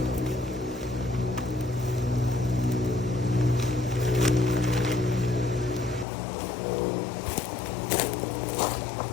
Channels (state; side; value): drops out; right; at 6.1 s